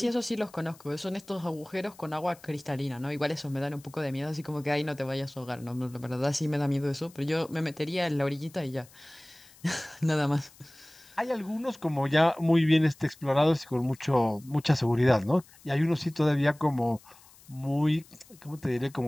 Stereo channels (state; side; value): noise; left; hiss, 25 dB below the sound